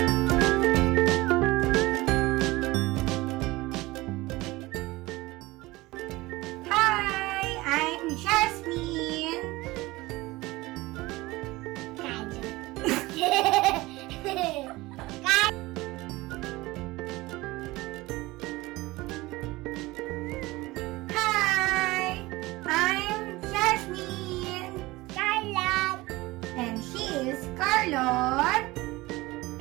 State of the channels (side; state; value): left; quieter; 20.3 dB